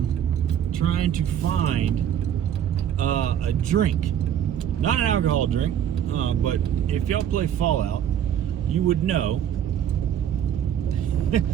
trying to find a drink. Not an alcohol drink, but if y'all play Fallout, you would know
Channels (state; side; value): quieter; left; 9.7 dB